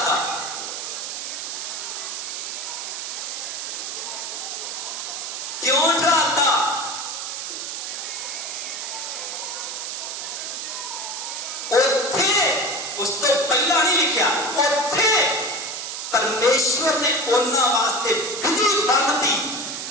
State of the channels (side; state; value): right; noise; hiss, 5 dB below the sound